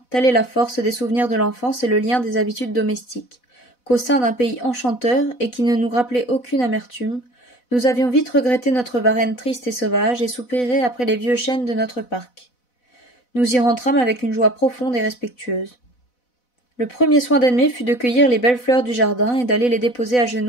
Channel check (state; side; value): late; right; 4.0 ms